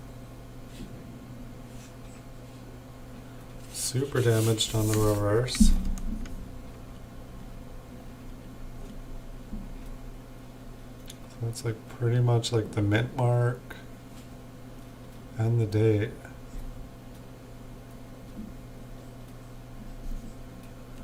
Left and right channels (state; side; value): identical; both; correlation 1.00